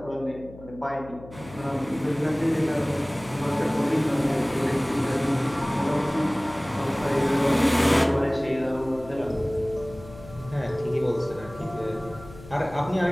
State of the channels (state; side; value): noise; left; hum, 18 dB below the sound